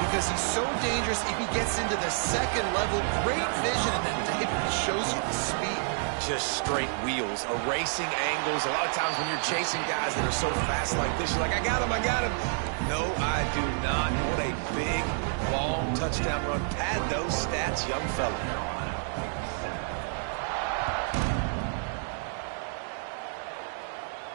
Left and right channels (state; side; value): silent; left; 59 dB below the other